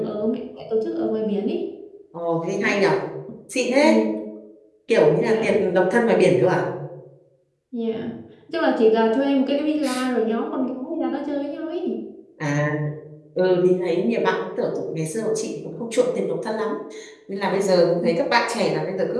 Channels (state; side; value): identical; both; correlation 1.00